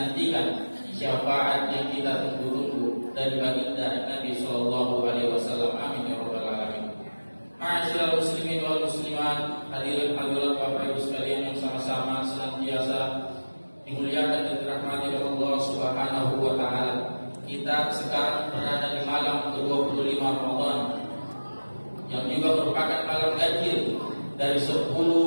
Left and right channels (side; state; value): both; inverted; correlation -1.00